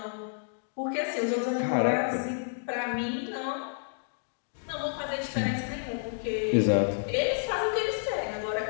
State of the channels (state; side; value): silent; right; digital silence